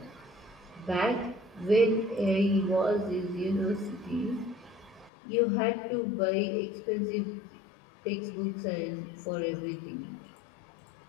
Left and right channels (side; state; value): right; drops out; at 5.1 s